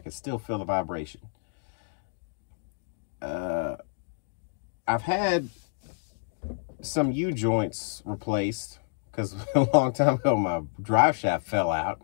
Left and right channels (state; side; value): silent; right; digital silence